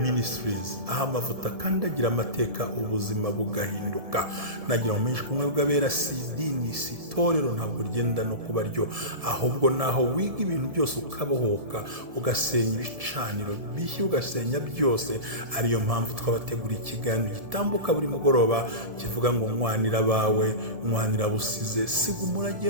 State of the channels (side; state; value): left; late; 1.7 ms